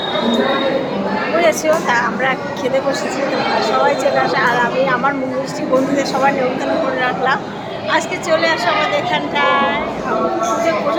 বুঝেছো। তা আমরা খেতে বসেছি, তোমরা সবাই চলে আসে। আর আমি আমার মিষ্টি বন্ধুদের সবাই নিমন্ত্রণ করে রাখলাম। আজকে চলে আসো আমাদের এখানটায়। পুজোর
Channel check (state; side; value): identical; both; correlation 1.00